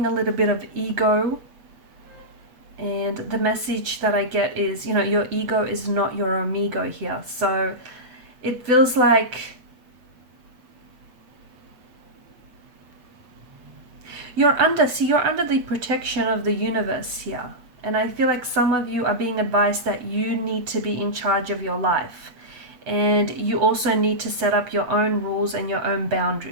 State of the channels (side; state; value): left; late; 7.9 ms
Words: a little bit of ego. And the message that I get is, you know, your ego is not your amigo here. So it feels like you're under the protection of the universe here. And I feel like some of you are being advised that you need to be in charge of your life. And you also need to set up your own rules and your own